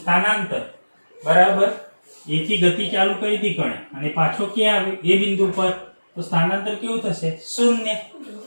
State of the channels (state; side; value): inverted; both; correlation -1.00